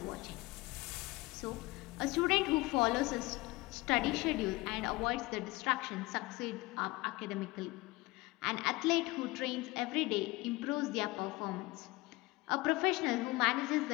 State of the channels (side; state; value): right; quieter; 21.6 dB